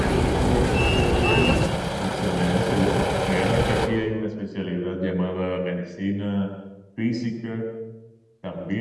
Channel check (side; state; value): both; identical; correlation 1.00